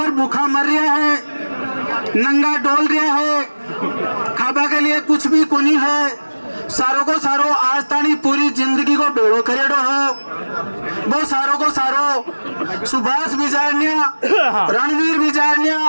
भूखा मर रहा है, नंगा डोल रहा है, खाबा के लिए कुछ भी कोनी है। सारों को सारो आज तानी पूरी जिंदगी को बेड़ो करेड़ो हो। वो सारों को सारो सुभाष बिजारनिया, रणवीर बिजारनिया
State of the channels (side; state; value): both; inverted; correlation -1.00